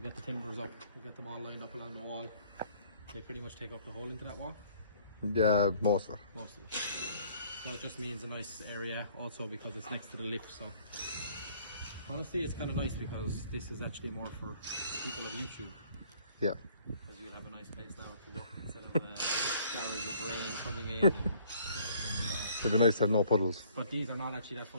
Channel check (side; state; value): both; inverted; correlation -0.58